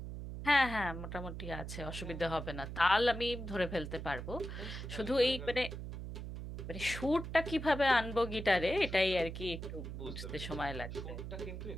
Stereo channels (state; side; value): noise; right; hum, 7 dB below the sound